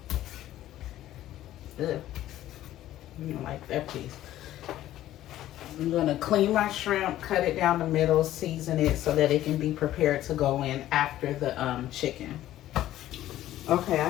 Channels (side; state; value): right; quieter; 13.6 dB